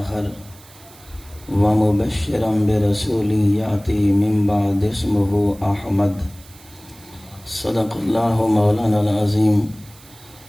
ومبشرا برسول یأتی من بعد اسمہ احمد صدق اللہ مولانا العظیم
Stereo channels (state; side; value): noise; right; hiss, 23 dB below the sound